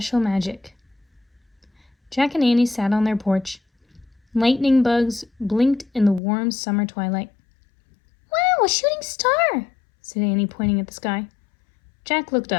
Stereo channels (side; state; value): right; drops out; at 6.2 s